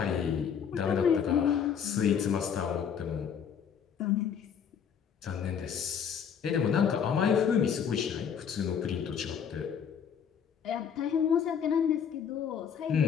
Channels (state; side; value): quieter; right; 7.6 dB